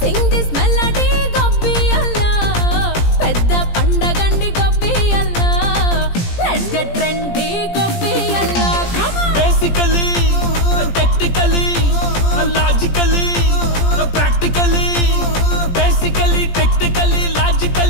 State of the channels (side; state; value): right; late; 17 ms